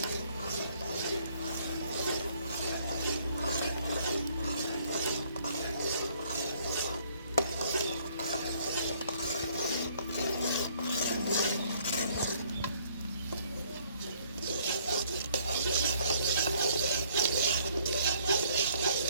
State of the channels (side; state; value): both; inverted; correlation -0.63